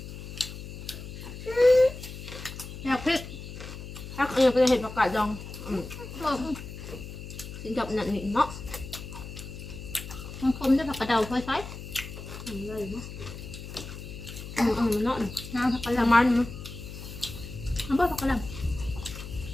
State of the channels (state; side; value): noise; left; hum, 11 dB below the sound